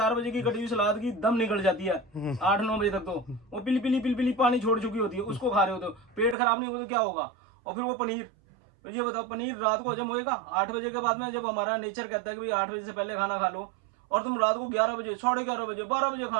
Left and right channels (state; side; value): drops out; left; at 6.4 s